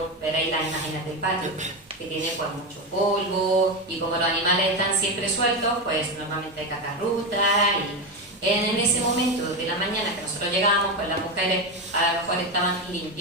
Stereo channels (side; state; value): both; normal; correlation 0.14